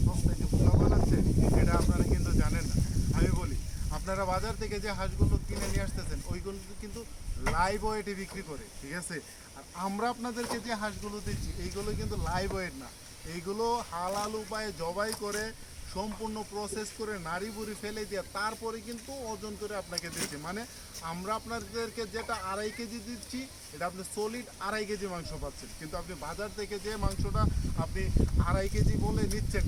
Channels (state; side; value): identical; both; correlation 1.00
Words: সস্তায় যে বোকা বানাচ্ছে এটা আপনারা কিন্তু জানেন না। আমি বলি, আপনারা বাজার থেকে যে হাঁসগুলো কিনে নিয়ে আসতেছেন ওইগুলো কিন্তু লাইভ ওয়েটে বিক্রি করে, ঠিক আছে? আর আমরা আপনাদেরকে যে হাঁসগুলো দিচ্ছি এইগুলো কিন্তু লাইভ ওয়েট না, এইগুলো হালাল উপায়ে জবাই করে সম্পূর্ণ প্রসেস করে নাড়ি বুড়ি ফেলে দিয়ে তারপরে কিন্তু ওজন করে আপনাকে দিচ্ছি। মানে আমরা আপনাদেরকে যেটা 2.5 কেজি দিচ্ছি এটা আপনি সলিড 2.5 কেজি মাংস পাচ্ছেন, কিন্তু আপনি বাজার থেকে যে মাংসটা আপনি 2.5 কেজি বলে নিচ্ছেন,